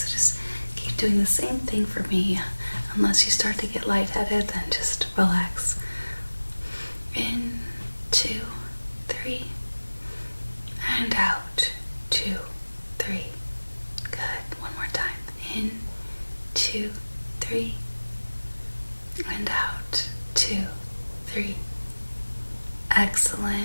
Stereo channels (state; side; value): inverted; both; correlation -1.00